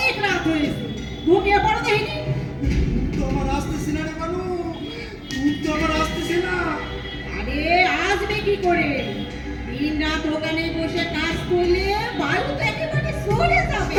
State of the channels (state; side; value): identical; both; correlation 1.00